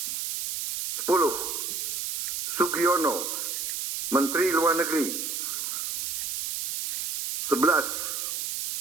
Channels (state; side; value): noise; right; hiss, 3 dB below the sound